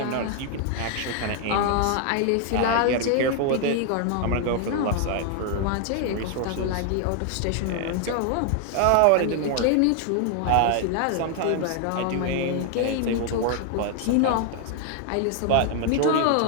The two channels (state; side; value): different; both; correlation 0.00